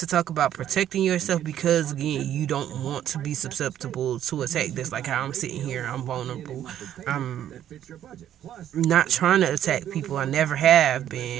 talk about protecting yourself because again you don't want to be susceptible to attack. That's like how I'm sitting here. I'm vulnerable. I'm not trying to attack people. I never have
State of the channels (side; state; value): left; quieter; 11.0 dB